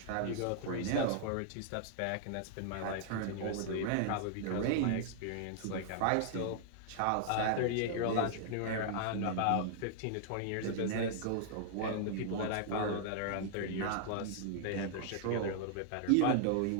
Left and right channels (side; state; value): both; different; correlation -0.01